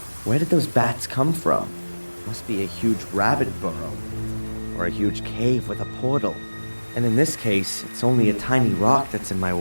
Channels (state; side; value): inverted; both; correlation -1.00